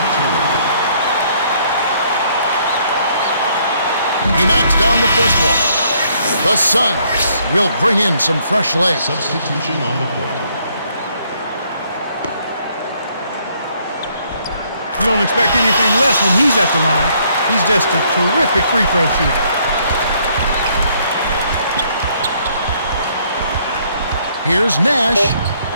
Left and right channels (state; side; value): inverted; both; correlation -0.67